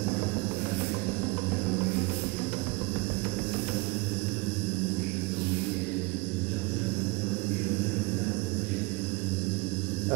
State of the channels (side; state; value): left; quieter; 25.0 dB